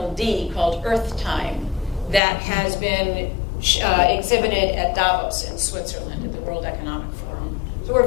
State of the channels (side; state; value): right; drops out; at 2.2 s